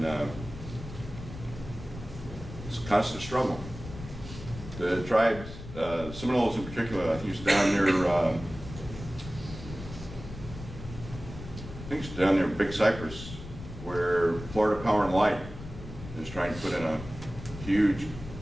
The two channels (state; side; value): noise; left; rumble, 12 dB below the sound